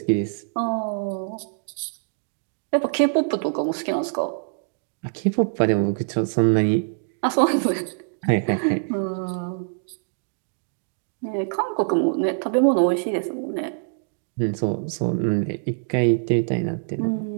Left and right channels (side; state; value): left; silent; digital silence